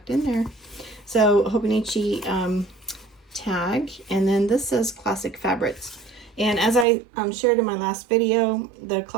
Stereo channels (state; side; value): drops out; left; at 6.9 s